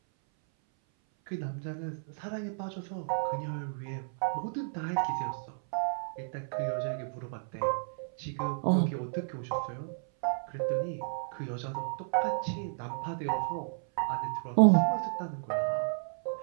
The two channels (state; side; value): silent; left; 56 dB below the other